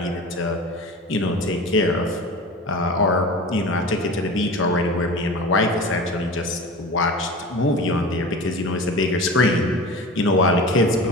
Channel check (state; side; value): normal; both; correlation 0.34